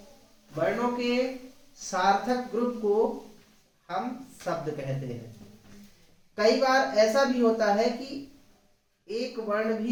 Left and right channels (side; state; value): both; identical; correlation 1.00